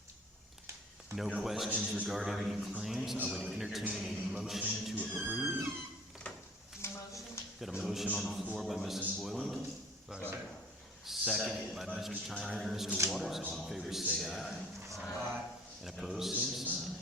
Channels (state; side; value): normal; both; correlation 0.51